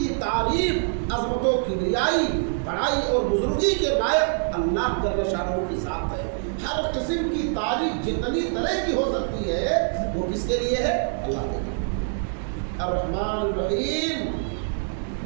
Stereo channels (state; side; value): silent; left; digital silence